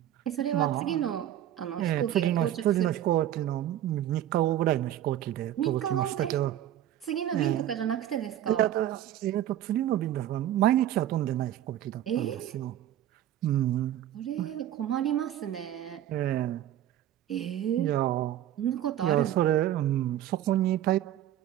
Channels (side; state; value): left; quieter; 11.9 dB